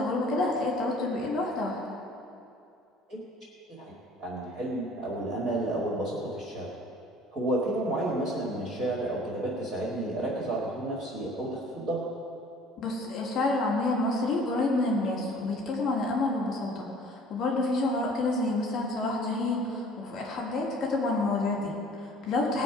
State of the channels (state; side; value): normal; both; correlation 0.51